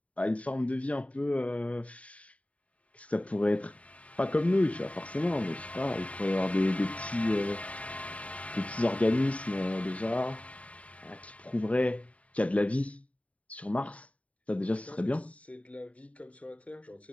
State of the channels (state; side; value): late; right; 0.066 ms